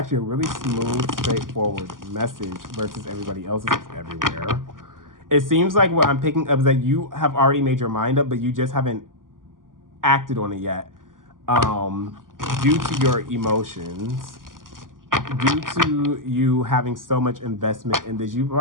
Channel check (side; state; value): left; late; 0.90 ms